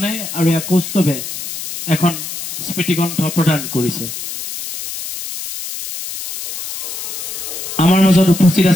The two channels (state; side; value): noise; left; hiss, 8 dB below the sound